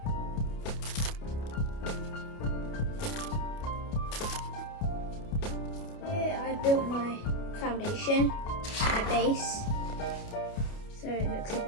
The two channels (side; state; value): right; late; 29 ms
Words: I built my foundation, my base, so it looks a